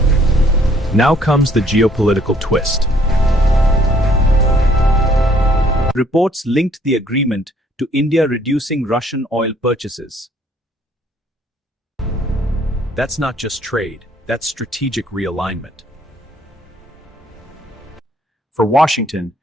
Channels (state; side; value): normal; both; correlation 0.63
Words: Now comes the geopolitical twist. Reports linked the agreement to India reducing Russian oil purchases. That's not just trade, that's strategic realignment. For Washington,